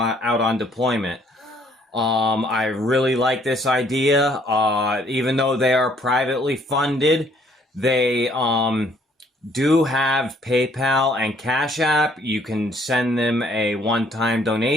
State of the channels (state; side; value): normal; both; correlation 0.63